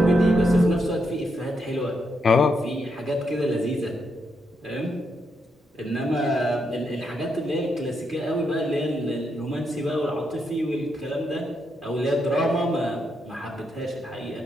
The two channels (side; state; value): both; normal; correlation 0.80